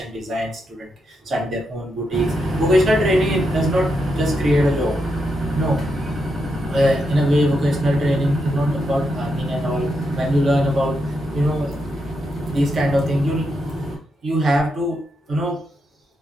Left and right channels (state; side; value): normal; both; correlation 0.83